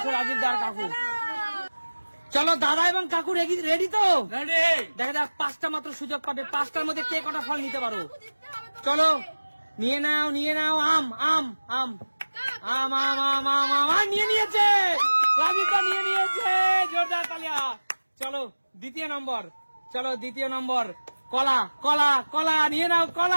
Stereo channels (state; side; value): inverted; both; correlation -1.00